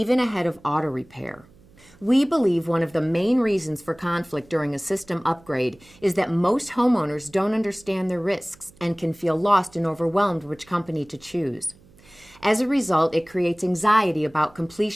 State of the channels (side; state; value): right; noise; hum, 27 dB below the sound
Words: ahead of auto repair. We believe one of the main reasons for conflict during a system upgrade is that most homeowners don't understand their risks and can feel lost and overwhelmed which company to choose. As a result, it creates anxiety about